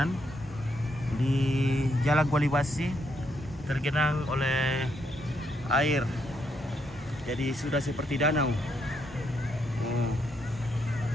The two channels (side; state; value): both; normal; correlation 0.76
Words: di Jalan Kualibasi tergenang oleh air. Jadi sudah seperti danau.